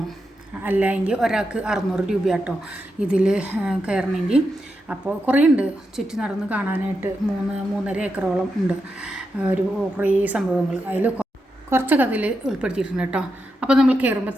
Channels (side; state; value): both; normal; correlation 0.86